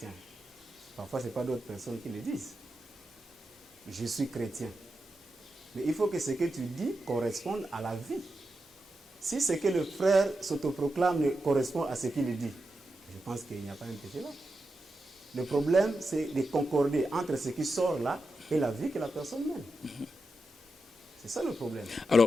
Parfois, ce n'est pas d'autres personnes qui le disent. Je suis chrétien. Mais il faut que ce que tu dis corresponde à la vie. Si ce que le frère s'autoproclame ne correspond à ce qu'il dit, je pense qu'il n'y a pas un péché là. Le problème, c'est de concorder entre ce qui sort là et la vie que la personne mène. C'est ça le problème.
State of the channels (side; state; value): both; normal; correlation 0.88